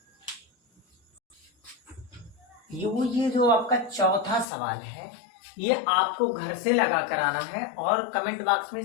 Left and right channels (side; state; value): right; drops out; at 4.5 s